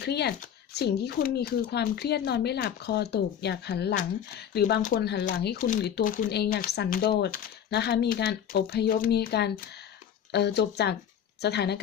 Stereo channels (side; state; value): right; quieter; 9.1 dB